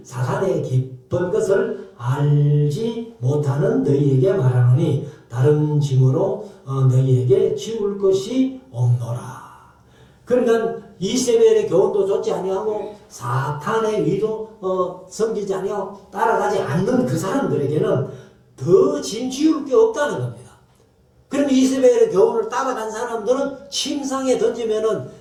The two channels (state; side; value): identical; both; correlation 1.00